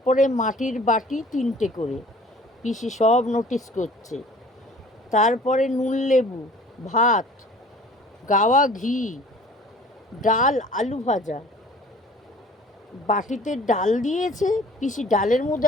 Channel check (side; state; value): both; normal; correlation 0.49